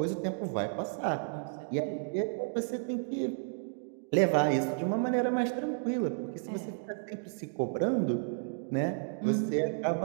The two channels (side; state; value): left; silent; digital silence